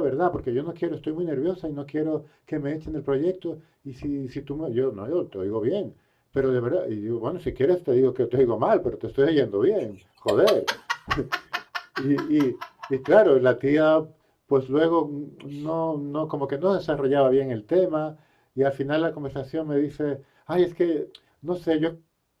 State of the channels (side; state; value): both; identical; correlation 1.00